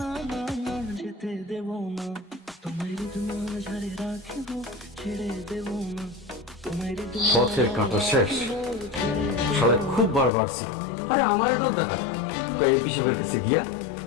পথের কাঁটা শেষ, শালা খুব বার বাড়ছি। আরে আমার ডর দেখায় কয়ে পিসবের কাছে গিয়া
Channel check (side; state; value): right; drops out; at 10.3 s